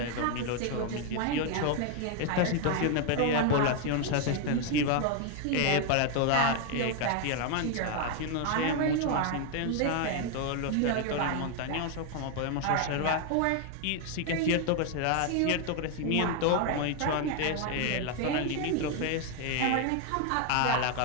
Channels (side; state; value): both; different; correlation 0.01